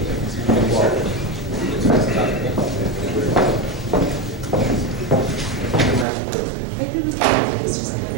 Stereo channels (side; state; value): left; drops out; at 6.1 s